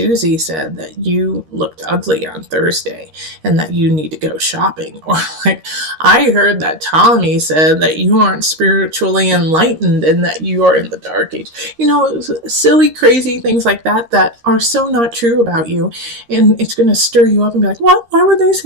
said that you looked ugly on Thursday and that you need to go shopping. Or like, I heard that Tommy said that you aren't spiritually enlightened and that you are in the dark age. Silly, crazy things like that are so not true about you. And it's going to stir you up and be like, what? Why would they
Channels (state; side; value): late; left; 13 ms